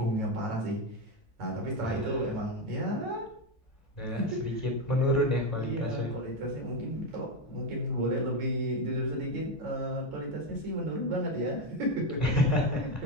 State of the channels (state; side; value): normal; both; correlation 0.10